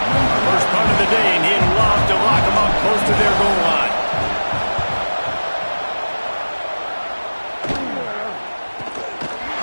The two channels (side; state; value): both; inverted; correlation -1.00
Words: First punt of the day, and he'd love to lock them up close to their goal line.